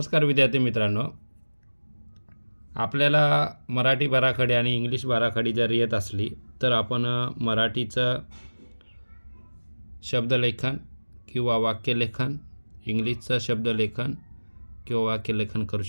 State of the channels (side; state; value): both; inverted; correlation -1.00